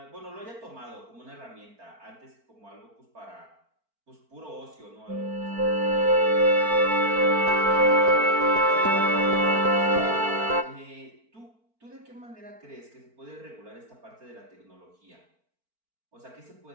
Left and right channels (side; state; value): left; late; 4.4 ms